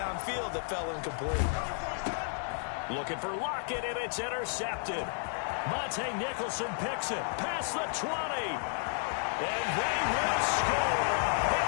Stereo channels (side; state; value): right; silent; 56 dB below the other